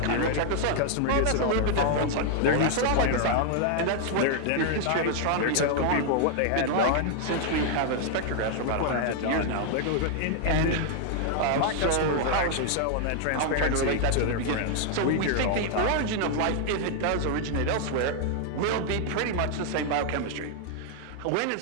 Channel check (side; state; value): both; different; correlation 0.00